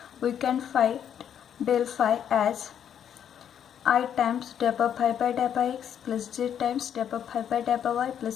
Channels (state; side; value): quieter; right; 9.0 dB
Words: We can find del phi as I times double phi by double x plus j times double phi by double y